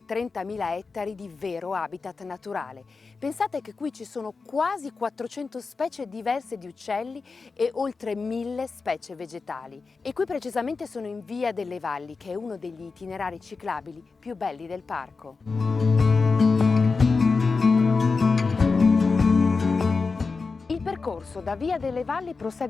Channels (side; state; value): right; quieter; 4.4 dB